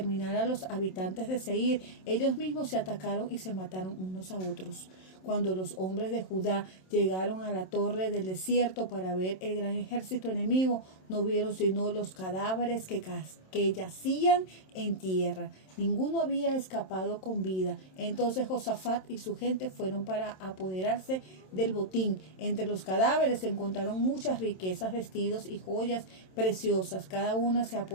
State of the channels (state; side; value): late; right; 27 ms